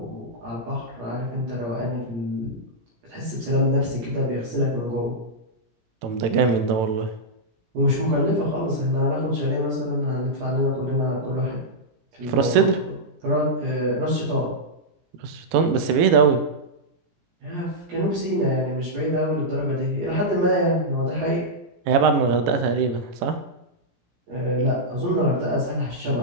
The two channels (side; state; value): left; late; 18 ms